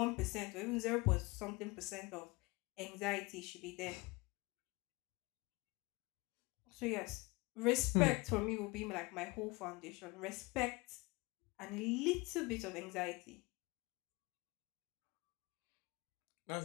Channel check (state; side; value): quieter; right; 24.5 dB